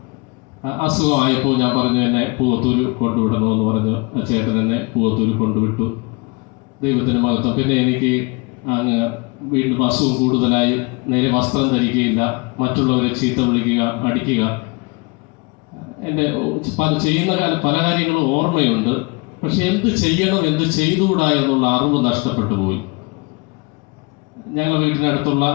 അസുഖമായപ്പോൾ ഞാൻ പറഞ്ഞു എന്നെ പൂവത്തൂര് കൊണ്ടുവിടണമെന്ന് പറഞ്ഞു. ചേട്ടൻ എന്നെ പൂവത്തൂര് കൊണ്ടുവിട്ടു. ദൈവത്തിന് മഹത്വം. പിന്നെ എനിക്ക് അങ്ങ് വീണ്ടും അസുഖം കൂടുതലായി. നേരെ വസ്ത്രം ധരിക്കുകയില്ല, മറ്റുള്ളവരെ ചീത്ത വിളിക്കുക, അടിക്കുക. എൻ്റെ ചെയ്യുന്ന പല കാര്യങ്ങളും ഓർമ്മയുണ്ട്. പക്ഷെ എന്ത് ചെയ്യണം, എന്ത് ചെയ്തുകൂടാ എന്നുള്ള അറിവ് നഷ്ടപ്പെട്ടു പോയി. ഞങ്ങളുടെ വീട്ടിനടുത്തുള്ള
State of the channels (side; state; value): right; quieter; 28.7 dB